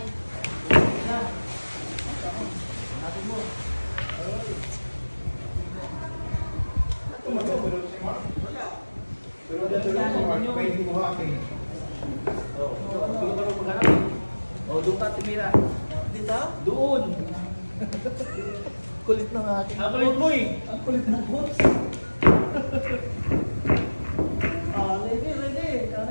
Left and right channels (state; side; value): inverted; both; correlation -1.00